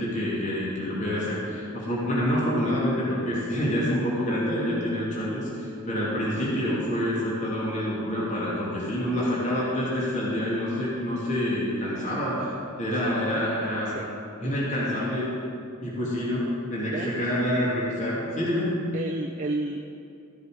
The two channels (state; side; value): normal; both; correlation 0.49